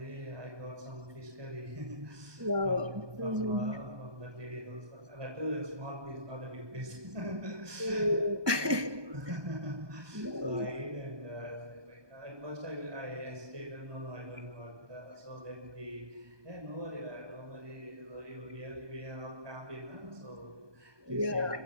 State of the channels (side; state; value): left; late; 1.2 ms